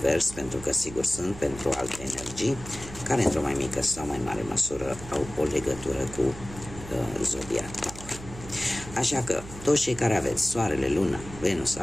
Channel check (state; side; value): noise; right; hum, 14 dB below the sound